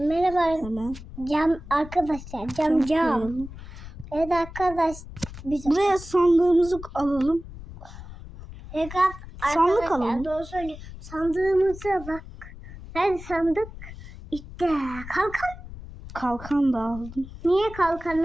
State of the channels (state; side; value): noise; left; rumble, 14 dB below the sound